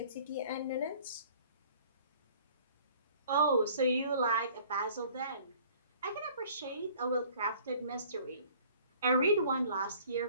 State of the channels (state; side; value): inverted; both; correlation -0.53